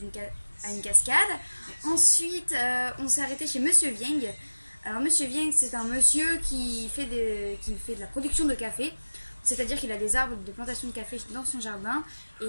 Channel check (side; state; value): both; inverted; correlation -1.00